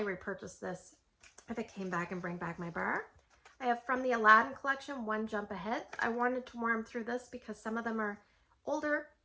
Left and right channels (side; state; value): both; identical; correlation 1.00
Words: repurchase this if it came back and bring back my bar. I have from the Aladdin collection, One Jump Ahead. I wanted to warm through this because some of them are older,